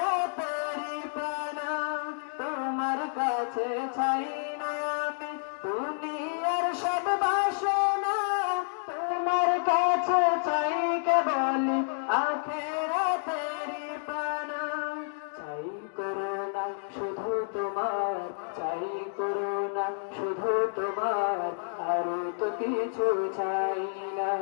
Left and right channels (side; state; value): right; silent; digital silence